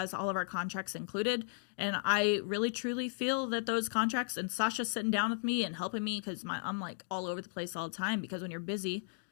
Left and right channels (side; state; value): right; silent; digital silence